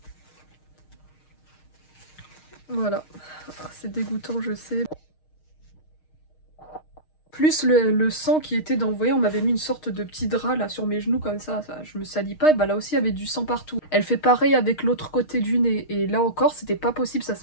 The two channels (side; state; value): right; late; 6.4 ms